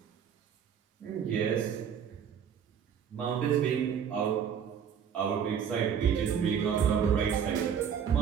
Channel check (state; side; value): quieter; left; 7.9 dB